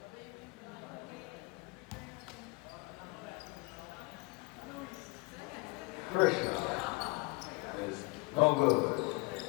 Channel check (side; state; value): right; quieter; 26.6 dB